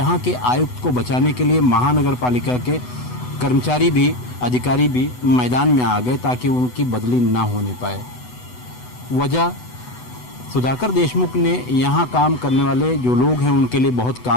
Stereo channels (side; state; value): right; late; 8.0 ms